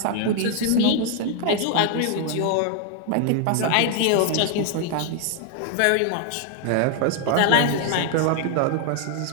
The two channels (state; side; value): different; both; correlation 0.00